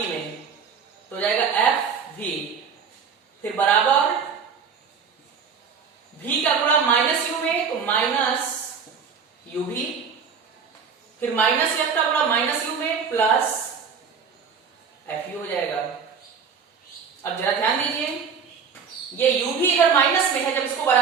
में, तो हो जाएगा FV, फिर बराबर V का गुणा माइनस U में, तो माइनस UV, फिर माइनस F का गुणा माइनस U में प्लस FU हो जाएगा। अब जरा ध्यान दीजिए, ये U भी इधर माइनस में है, जब इसको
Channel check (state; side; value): quieter; left; 6.3 dB